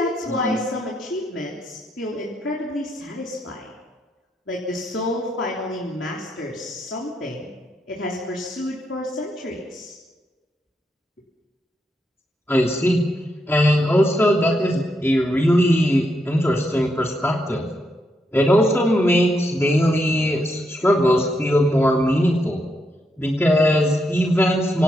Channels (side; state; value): both; normal; correlation 0.80